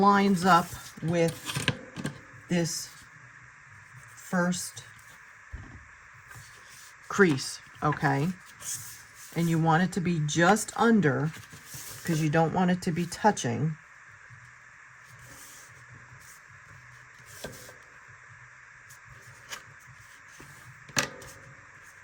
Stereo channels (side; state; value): both; identical; correlation 1.00